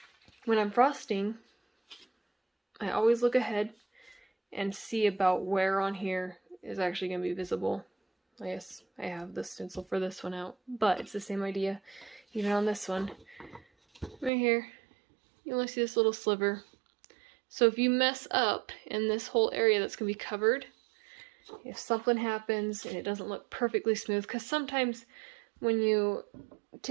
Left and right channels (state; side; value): drops out; left; at 14.3 s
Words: when I'm frosting, I always look ahead and see about where on here is actually going to be visible. I guess I have the stencil for this one out, but it's the same idea. Even on this one, right here, you only see this little sliver. So if you mess up in this whole area that's going to be covered, if something happens and it doesn't look perfectly smooth, because sometimes when you